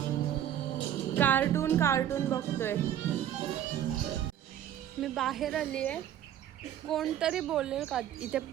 कार्टून कार्टून बघतोय. मी बाहेर आली आहे. कोणतरी बोलेल का इथे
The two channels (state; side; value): quieter; left; 10.8 dB